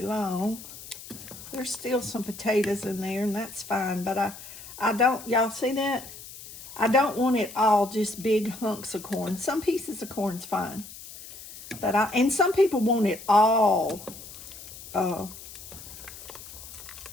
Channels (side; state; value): left; noise; hiss, 15 dB below the sound